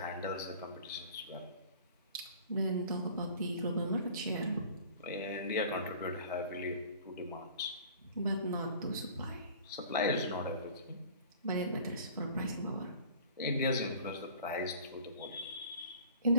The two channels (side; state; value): both; inverted; correlation -0.46